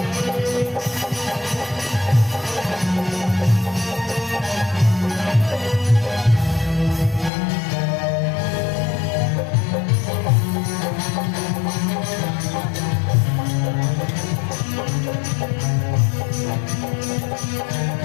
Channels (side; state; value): right; drops out; at 7.3 s